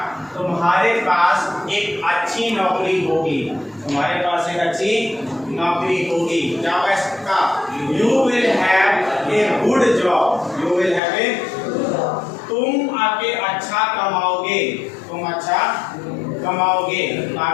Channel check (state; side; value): drops out; right; at 11.0 s